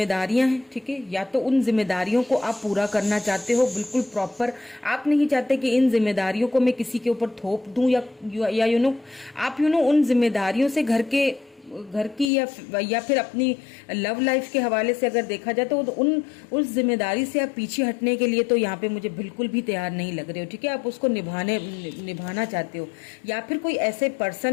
हैं। ठीक है, या तो उन जिम्मेदारियों को आप पूरा करना चाहते हो बिल्कुल प्रॉपर, आप नहीं चाहते कि इन जिम्मेदारियों को मैं किसी के ऊपर थोप दूं, या आप उन जिम्मेदारियों से घर की या फिर अपनी लव लाइफ के हवाले से अगर देखा जाए तो उस जिम्मेदारी से आप पीछे हटने के लिए तो यहाँ पे मुझे बिल्कुल भी तैयार नहीं लग रहे हो। ठीक है, आप उसको निभाना चाहते हो, या फिर कोई ऐसे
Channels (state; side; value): drops out; right; at 12.3 s